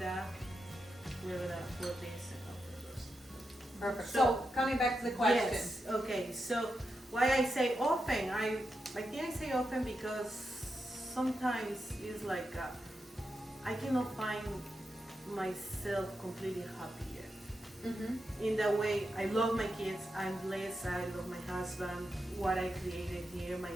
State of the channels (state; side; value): normal; both; correlation 0.87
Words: we're gonna put this in the roast. Perfect. So- So coming back to the question. Yes. Okay. So why I say often? I think I say often because sometimes it's like I cannot find myself completely happy yet. In the way I love my kids, I'm blessed, I love my husband, what I created here, my